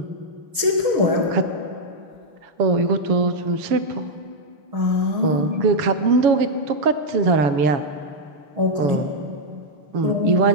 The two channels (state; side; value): late; left; 6.4 ms